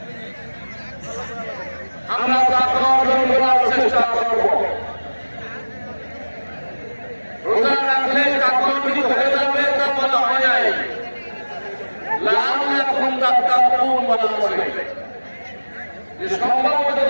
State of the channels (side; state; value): both; inverted; correlation -1.00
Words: আমরা তাকে অর্জন করার চেষ্টা করব। রোজা রাখলে কাকরটি হয়ে যাবে তা বলা হয় নাই, লাআল্লাকুম তাত্তাকুন বলা হয়েছে যে সম্ভবত